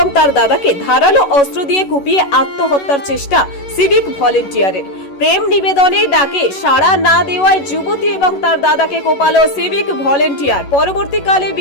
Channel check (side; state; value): right; late; 11 ms